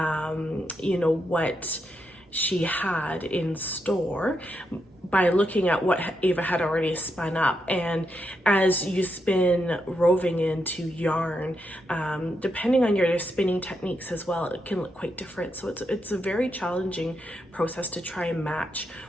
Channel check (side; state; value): both; normal; correlation 0.82